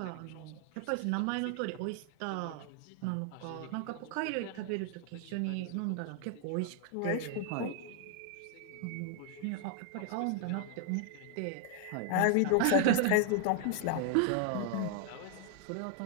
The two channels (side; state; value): both; different; correlation 0.00